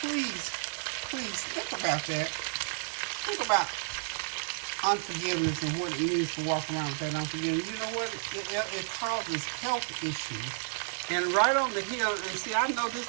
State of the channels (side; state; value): left; silent; 57 dB below the other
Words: please think about that. Think about unforgiveness and what it means to walk around with that unforgiveness. You know what? It causes health issues. And right on the hill, and see, I know